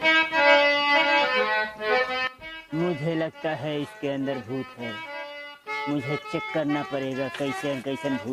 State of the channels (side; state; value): both; identical; correlation 1.00